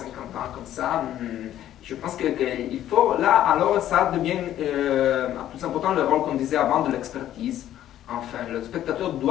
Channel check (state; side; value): quieter; right; 12.1 dB